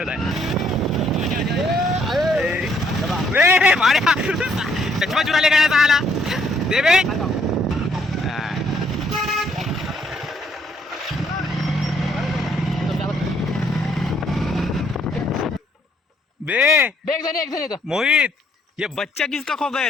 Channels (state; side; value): normal; both; correlation 0.67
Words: आहे चष्मा चुराले काय आला दे बे बे मोहित ये बच्चा किसका खो गया